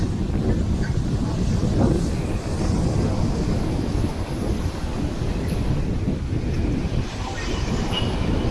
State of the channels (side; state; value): both; identical; correlation 1.00